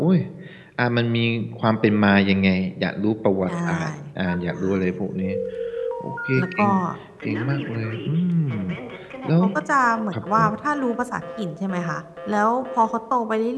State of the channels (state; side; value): identical; both; correlation 1.00